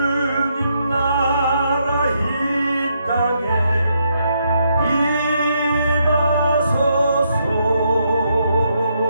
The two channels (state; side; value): inverted; both; correlation -0.76